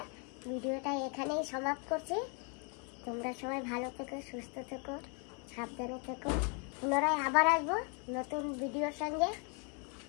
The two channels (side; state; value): right; quieter; 37.5 dB